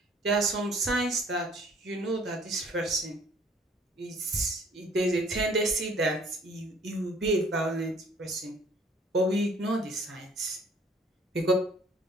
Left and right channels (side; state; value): both; normal; correlation 0.57